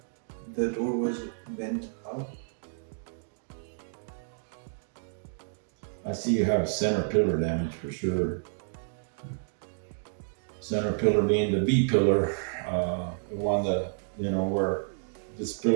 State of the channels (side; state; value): left; silent; digital silence